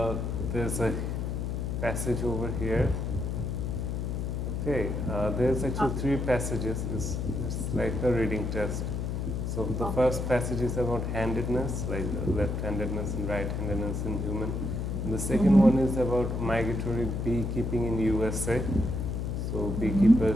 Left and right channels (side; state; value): left; noise; hum, 2 dB below the sound